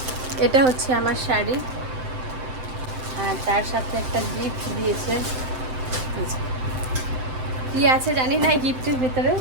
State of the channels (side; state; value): left; late; 7.7 ms